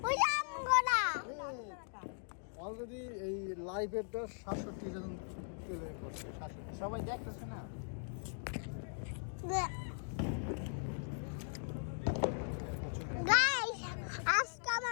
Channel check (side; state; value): right; silent; digital silence